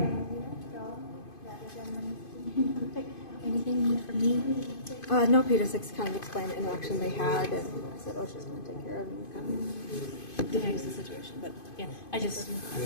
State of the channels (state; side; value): late; right; 2.5 ms